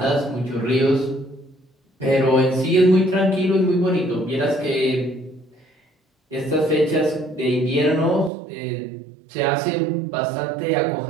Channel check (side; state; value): left; drops out; at 8.3 s